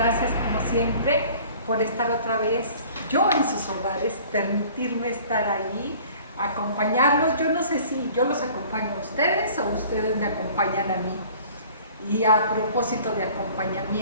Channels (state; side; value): inverted; both; correlation -0.49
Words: siempre por estar otra vez yo en sus hogares, permitirme estar ahí, acompañarlos. Yo no sé si yo los acompaño a ustedes o ustedes me acompañan a mí. Y a propósito de